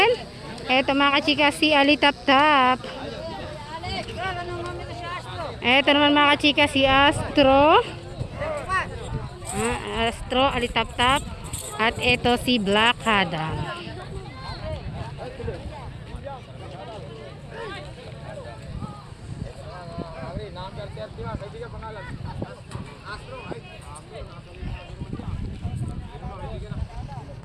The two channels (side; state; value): both; identical; correlation 1.00